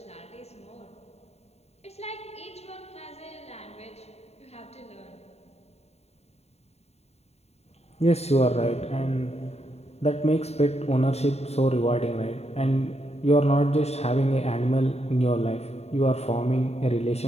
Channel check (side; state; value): right; late; 0.31 ms